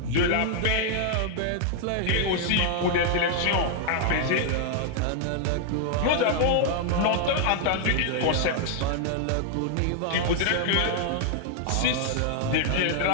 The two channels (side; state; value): both; different; correlation 0.00